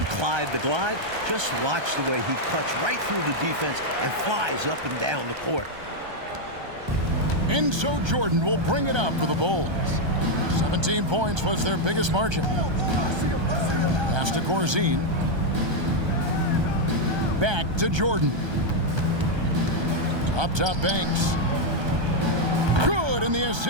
Clyde the Glide, just watch the way he cuts right through the defense and flies up and down the court. And so Jordan will bring it up for the Bulls. 17 points was their biggest margin. Pass to Corzine. Back to Jordan. Up top, Banks. Good, and the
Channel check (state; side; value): late; left; 1.3 ms